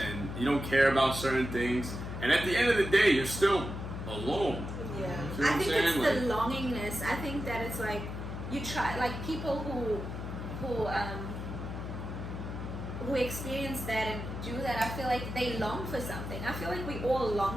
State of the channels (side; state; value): left; noise; hum, 7 dB below the sound